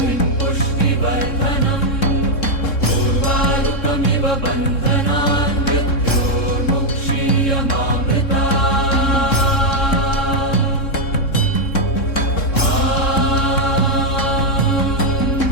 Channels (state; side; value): late; right; 3.7 ms